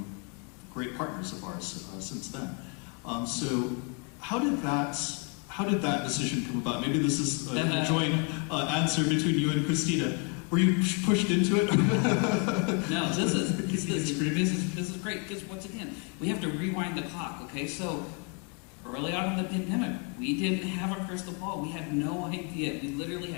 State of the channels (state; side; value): quieter; right; 36.8 dB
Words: great partners of ours since then. So how did that decision come about? Maybe this is a joint answer between you and Christina. Were you pushed into it? No, this is great, because once again, we have to rewind the clock, okay? So early on in the pandemic, we didn't have a crystal ball. We had no idea. We literally